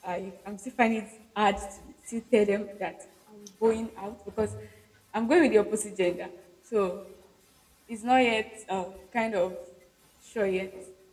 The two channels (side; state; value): both; identical; correlation 1.00